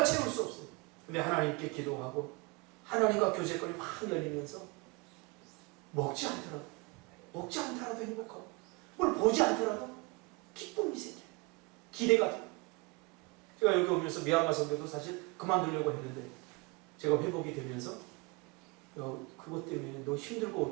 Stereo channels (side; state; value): left; quieter; 28.3 dB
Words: 채울 수 없어요. 근데 하나님께 기도하고 하나님과 교제권이 확 열리면서 먹지 않더라도 행복하고 뭘 보지 않더라도 기쁨이 생겨요. 기대가 돼요. 제가 여기 오면서 미얀마 선교도 사실 그만두려고 했는데 제가 회복이 되면서 그것 때문에 너